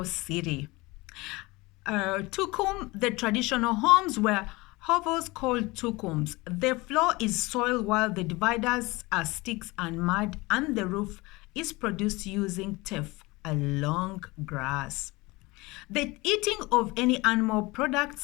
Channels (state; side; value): quieter; right; 22.8 dB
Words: city. Tukum, the traditional homes were hovels called tukums. The floor is soil while the dividers are sticks and mud, and the roof is produced using teff, a long grass. The eating of any animal